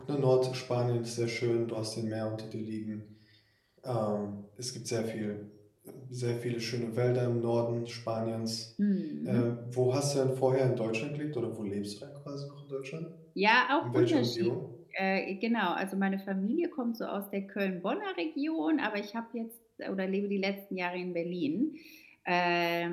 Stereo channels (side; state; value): both; identical; correlation 1.00